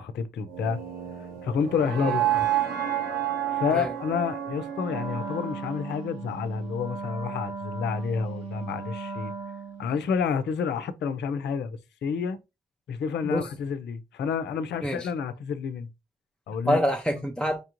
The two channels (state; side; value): normal; both; correlation 0.54